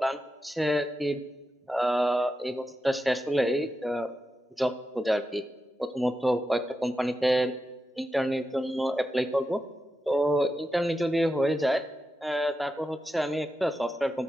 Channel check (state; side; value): normal; both; correlation 0.89